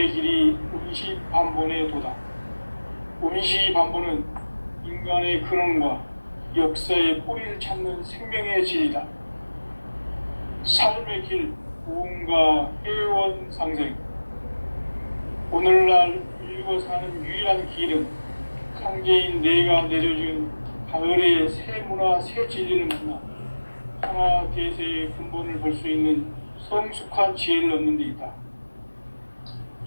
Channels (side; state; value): both; inverted; correlation -1.00